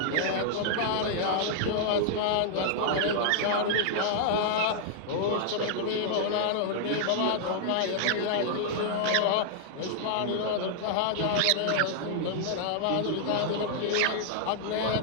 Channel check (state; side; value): different; both; correlation -0.01